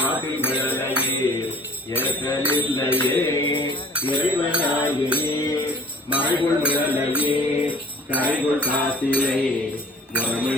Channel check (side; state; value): both; normal; correlation 0.51